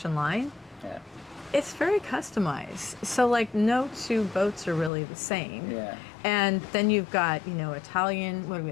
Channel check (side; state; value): right; drops out; at 4.9 s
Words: line, it's very customized. So like no two boats are really the same. And then you've got,